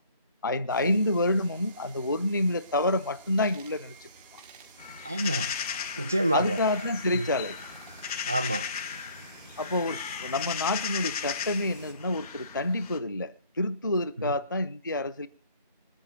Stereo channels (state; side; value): inverted; both; correlation -0.57